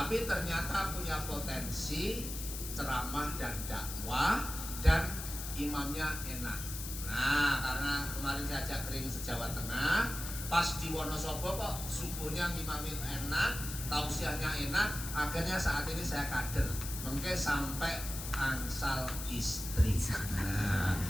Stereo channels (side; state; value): left; noise; hiss, 7 dB below the sound